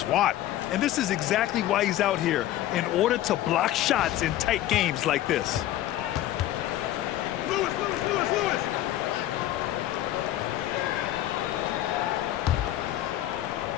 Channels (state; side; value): quieter; right; 13.6 dB